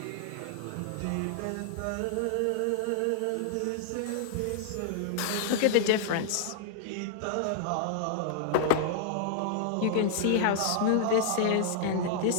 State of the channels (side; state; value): both; different; correlation -0.01